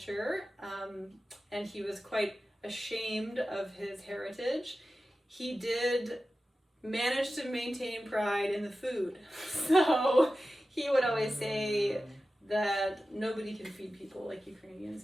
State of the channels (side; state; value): both; normal; correlation 0.94